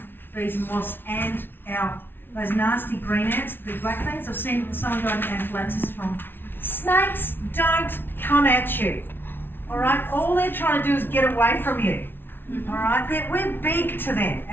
Bees and wasps and those nasty green ants, the big black things. I've seen someone die of anaphylaxis from. Snakes don't come at you. Alright? All they're trying to do is get away from you. Alright? We're big to them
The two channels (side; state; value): right; late; 0.10 ms